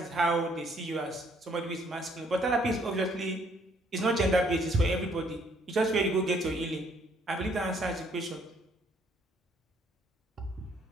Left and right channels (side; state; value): both; normal; correlation 0.65